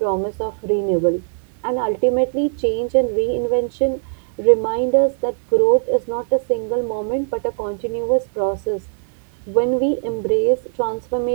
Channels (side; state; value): left; silent; digital silence